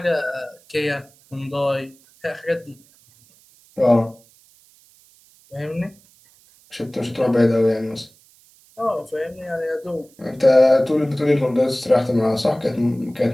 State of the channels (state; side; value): noise; right; hiss, 29 dB below the sound